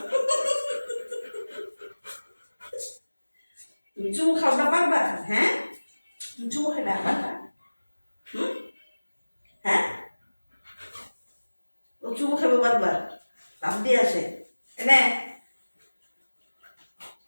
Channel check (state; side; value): inverted; both; correlation -1.00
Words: তুমি চুমু খাওয়া পারবা? হ্যাঁ, চুমু খেতে পারবা? হ্যাঁ, ও চুমু খাবে বারবার, লাভ দিয়ে আসে। এনে